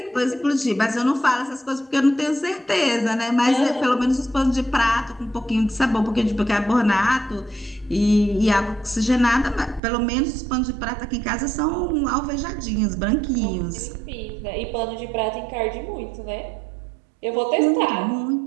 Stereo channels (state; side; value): drops out; left; at 9.8 s